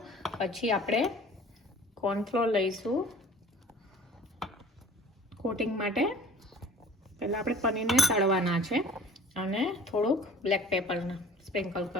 પછી આપણે કોર્નફ્લોર લઈશું કોટિંગ માટે. પહેલાં આપણે પનીરને તળવાના છે અને થોડુંક બ્લેક પેપરના સ્પ્રિંકલ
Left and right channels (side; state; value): both; normal; correlation 0.46